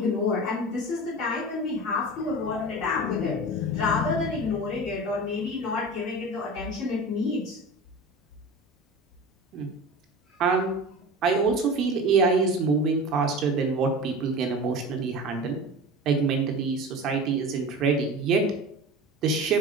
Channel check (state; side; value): normal; both; correlation 0.33